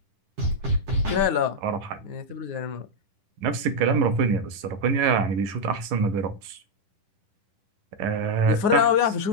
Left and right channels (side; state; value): left; late; 10 ms